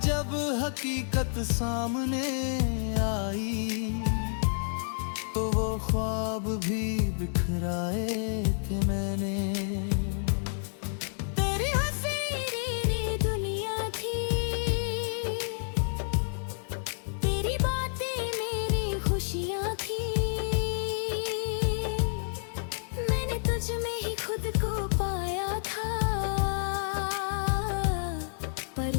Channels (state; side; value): silent; right; digital silence